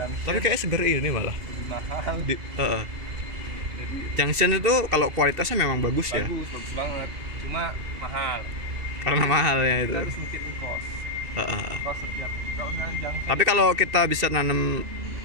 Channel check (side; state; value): left; late; 2.7 ms